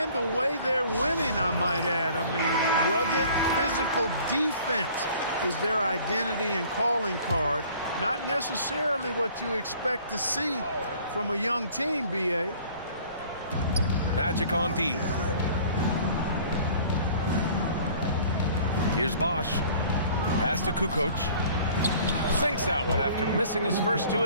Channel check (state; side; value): inverted; both; correlation -0.51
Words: the way they're winning, I might add. I mean, rugged physical defense is their identity and calling card. Not necessarily what you expect to see from a young team, B.A. Magic on D. Here's Bosch. Pass to Kukoc. Sinks that one after missing his first 2